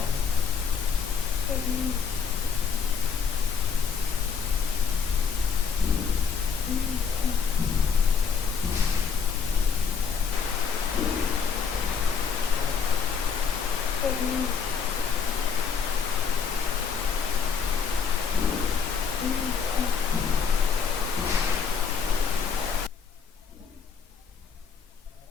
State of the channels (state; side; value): quieter; right; 6.1 dB